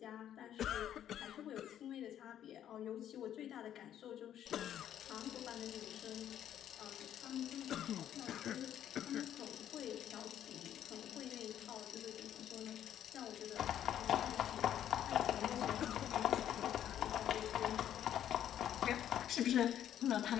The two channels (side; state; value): right; quieter; 10.6 dB